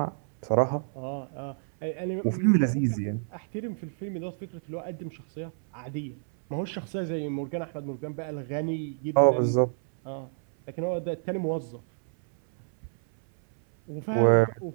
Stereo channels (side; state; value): left; silent; 58 dB below the other